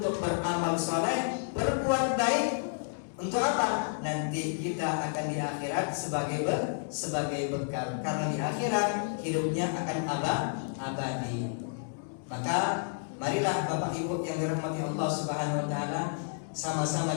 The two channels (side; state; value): right; silent; digital silence